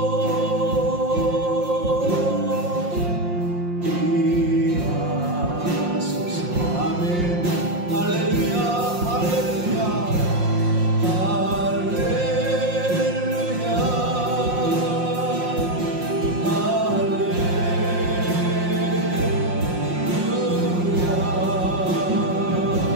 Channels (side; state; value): left; late; 5.6 ms